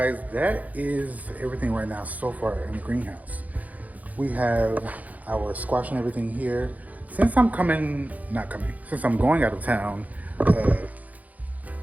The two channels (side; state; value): left; late; 0.077 ms